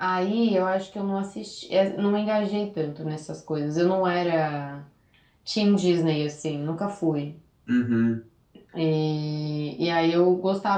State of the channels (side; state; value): both; identical; correlation 1.00